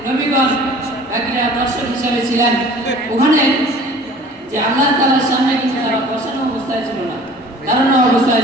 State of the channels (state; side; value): normal; both; correlation 0.47